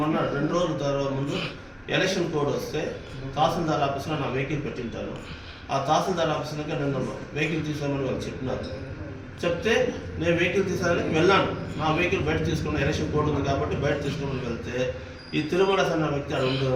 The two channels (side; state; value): both; identical; correlation 1.00